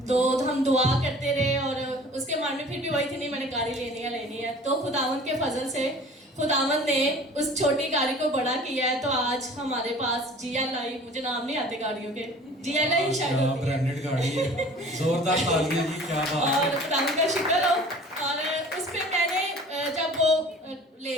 تو ہم دعا کرتے رہے اور اس کے من میں پھر بھی وہی تھی نہیں میں نے گاڑی لینی ہے. تو خداوند کے فضل سے خداوند نے اس چھوٹی گاڑی کو بڑا کیا ہے. تو آج ہمارے پاس جی ایل آئی, مجھے نام نہیں آتے گاڑیوں کے, جی ایل آئی شاید ہوتی ہے, برانڈڈ گاڑی ہے, زوردار تالیاں جی, کیا بات ہے. اور خداوند کا شکر ہو. اور اس پہ میں نے جب وہ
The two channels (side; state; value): both; normal; correlation 0.46